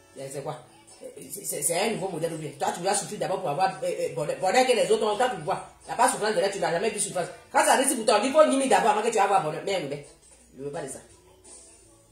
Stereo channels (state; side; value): identical; both; correlation 1.00